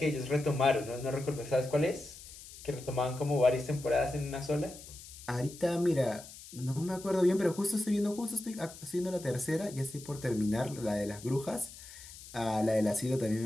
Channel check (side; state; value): left; noise; hiss, 16 dB below the sound